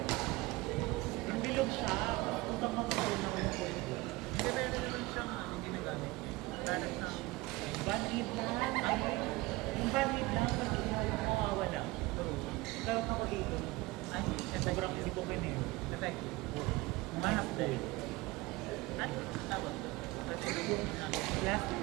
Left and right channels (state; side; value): quieter; left; 21.4 dB